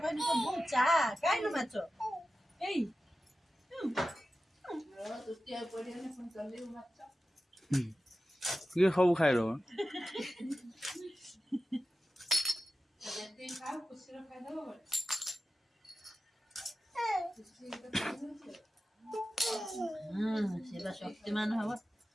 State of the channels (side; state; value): both; normal; correlation 0.93